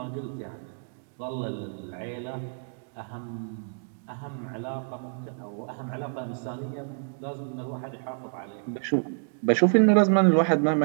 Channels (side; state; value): left; silent; digital silence